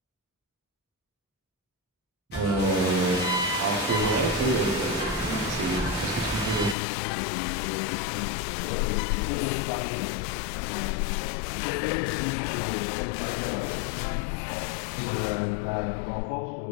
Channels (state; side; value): drops out; right; at 6.8 s